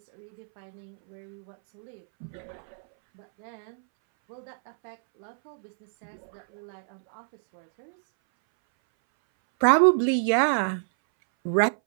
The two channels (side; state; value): left; silent; 60 dB below the other